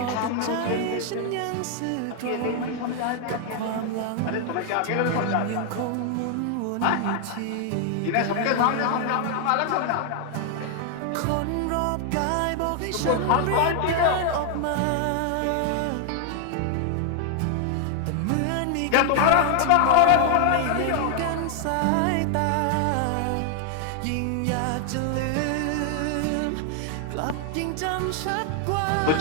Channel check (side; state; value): both; different; correlation 0.00